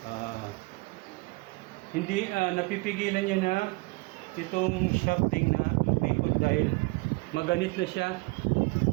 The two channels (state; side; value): quieter; left; 25.5 dB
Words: Hindi napipigilan niya na itong shafting na umikot dahil maganit na siya